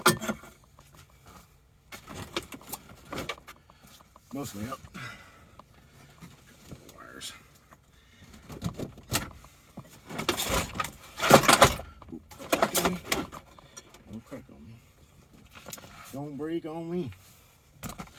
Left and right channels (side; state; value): both; identical; correlation 1.00